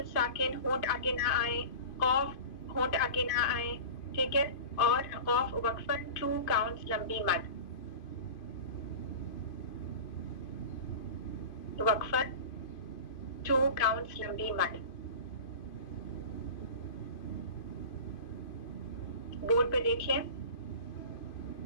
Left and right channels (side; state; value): right; late; 2.5 ms